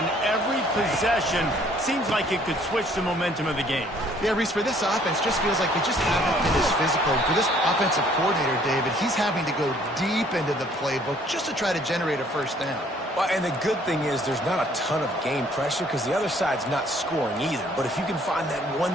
every possession seems like it could switch the momentum of the game. Yeah, Reese, for this offense, just feels like they just haven't been as physical. For this offensive coordinator, David, he's having to go deep into the playbook just to try to generate a first down. Well, and the good thing is there's not a ton of game pressure because the other side's not scoring either. But if you can find that one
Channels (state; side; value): normal; both; correlation 0.60